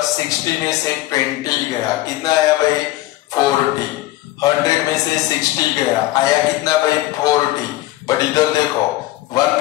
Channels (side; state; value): right; quieter; 16.9 dB